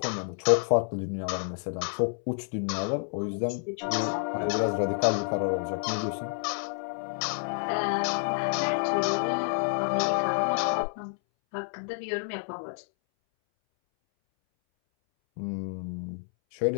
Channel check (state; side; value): silent; right; 59 dB below the other